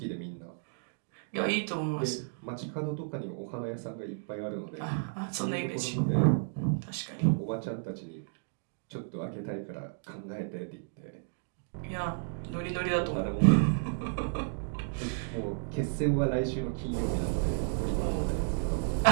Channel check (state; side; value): silent; left; digital silence